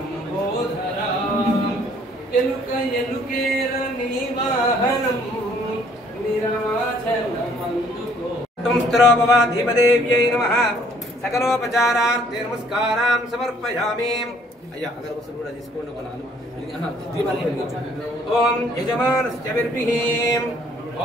ఎలుక ఎలుకేర నీ వాహనం నిరాచలమందుకో. ధీమదేవ్యై నమః. సకలోపచారార్థే నమస్కారాం సమర్పయామి. అయ్యా అగరబత్తులు కూడా తీసుకోండి. ఒక 4 దీపాలు వెలిగించండి. ఓం యజమానస్య విర్భిః.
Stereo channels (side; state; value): both; normal; correlation 0.61